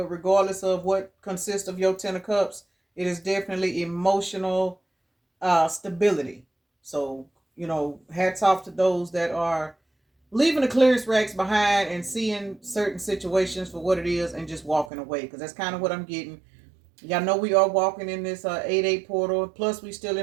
regardless of what consists of your Ten of Cups, it is definitely emotional stability. So, hats off to those that are leaving the clearance racks behind and seeing certain situations for what it is and just walking away, because that's kind of what I'm getting. Y'all know we are walking in this 8-8 portal. Plus, we still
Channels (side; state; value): left; drops out; at 14.9 s